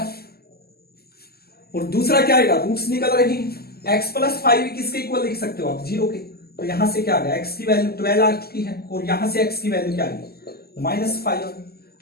और दूसरा क्या आएगा, रूट्स निकल रही है, x प्लस 5 किसके इक्वल लिख सकते हो आप 0 के, तो यहां से क्या आ गया x की वैल्यू 12 आ चुकी है, और यहां से x की वैल्यू क्या आएगी माइनस 5,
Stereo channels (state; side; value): late; right; 0.46 ms